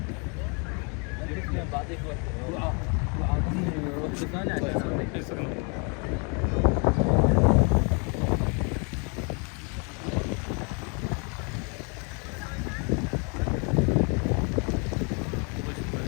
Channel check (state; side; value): quieter; right; 35.4 dB